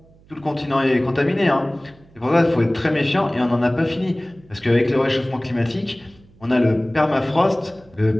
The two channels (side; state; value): right; noise; hum, 28 dB below the sound